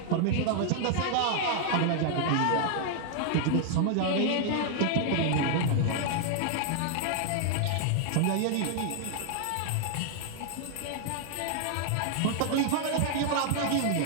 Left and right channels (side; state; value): both; different; correlation 0.00